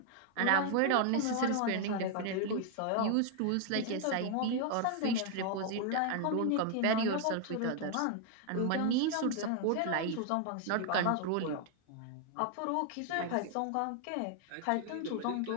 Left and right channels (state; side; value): different; both; correlation 0.00